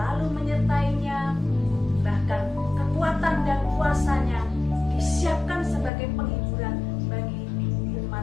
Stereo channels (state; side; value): drops out; right; at 5.9 s